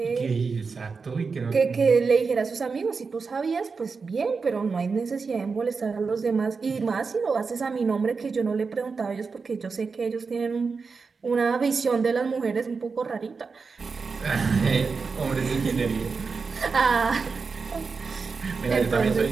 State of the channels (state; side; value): quieter; left; 4.9 dB